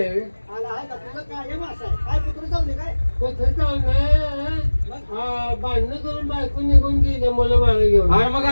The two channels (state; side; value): inverted; both; correlation -1.00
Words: आहे. आला आहे का तुझं कायम असं आहे. काय कुठं जाऊ दे काय कुठं चाललंय भांडणं करून बायको निघून गेले मुलं मागे घेऊन. अरे मग